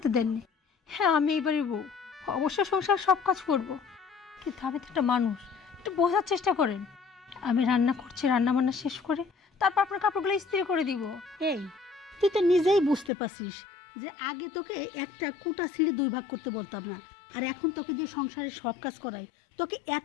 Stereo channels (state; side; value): drops out; right; at 13.1 s